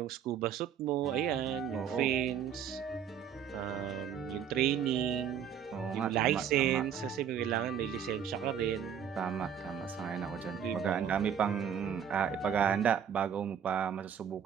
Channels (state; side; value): quieter; left; 8.4 dB